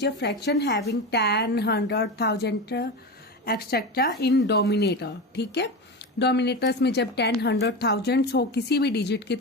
a fraction having 10, 100, 1000 etcetera in dominator. ठीक है, डोमिनेटर्स में जब 10, 100, 1000 हो किसी भी डिजिट के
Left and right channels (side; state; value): both; normal; correlation 0.23